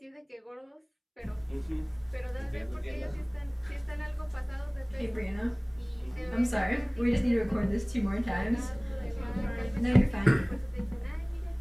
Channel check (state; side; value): identical; both; correlation 1.00